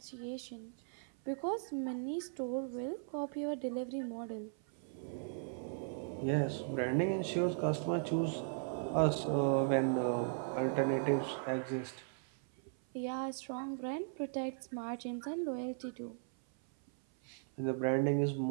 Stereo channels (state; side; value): silent; left; 53 dB below the other